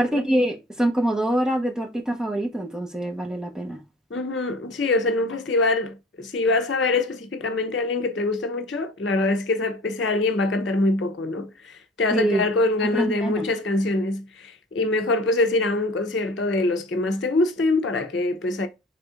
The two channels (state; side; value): normal; both; correlation 0.44